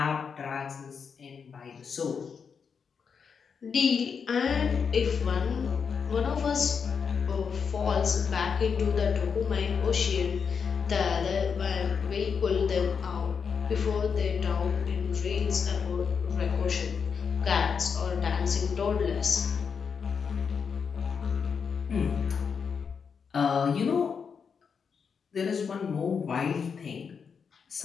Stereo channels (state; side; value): quieter; right; 6.2 dB